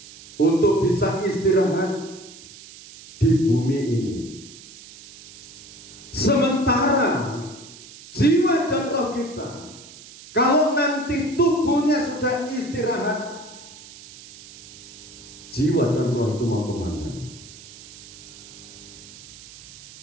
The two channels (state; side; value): noise; right; hiss, 18 dB below the sound